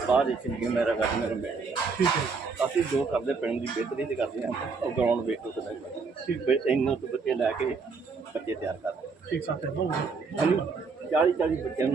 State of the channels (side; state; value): left; quieter; 4.7 dB